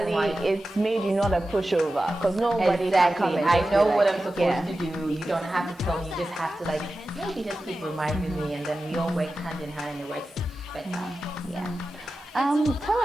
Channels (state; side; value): normal; both; correlation 0.93